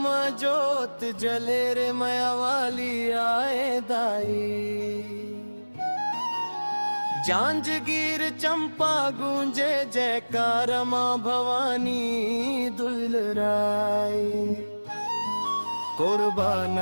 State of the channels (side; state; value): both; inverted; correlation -1.00